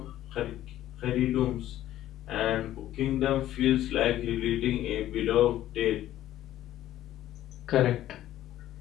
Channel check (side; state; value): right; quieter; 13.2 dB